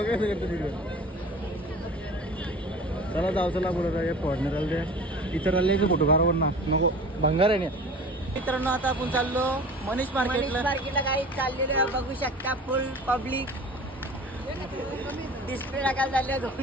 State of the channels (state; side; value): normal; both; correlation 0.40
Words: कसं करतो तिकडे. चला जाऊ चला बरोबर हे फॉर्नर आले इतर आले फोटो काढावर ना मग भंगार आहे ना. मित्रांनो आता आपण चाललो मनीष मार्केटला काही चाललेलं बघू शकता. फुल पब्लिक डिस्प्ले टाकायला चालले